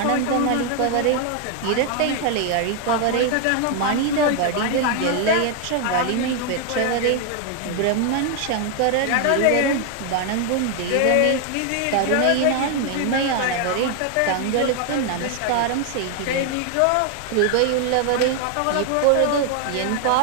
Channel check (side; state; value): both; different; correlation 0.00